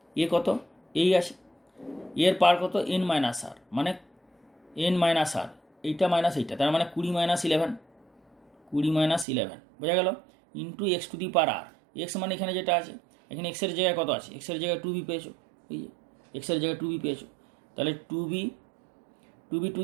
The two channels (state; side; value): drops out; left; at 9.2 s